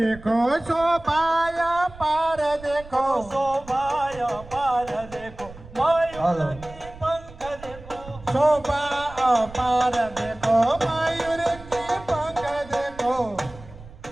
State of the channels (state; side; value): noise; right; rumble, 18 dB below the sound